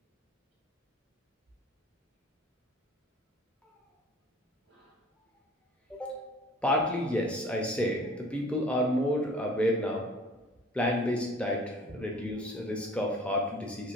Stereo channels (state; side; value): normal; both; correlation 0.48